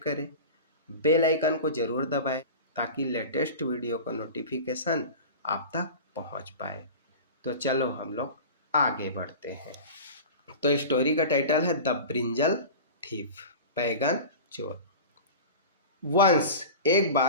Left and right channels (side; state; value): both; inverted; correlation -0.33